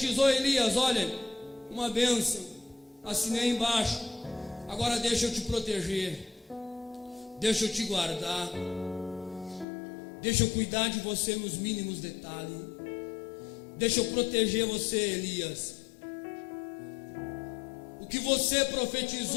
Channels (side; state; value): right; drops out; at 9.7 s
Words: Elias: olha, uma bênção, assinei embaixo, agora deixa eu te proteger, deixa eu te guardar, deixa eu cuidar de você nos mínimos detalhes, deixa eu proteger você, Elias. O que você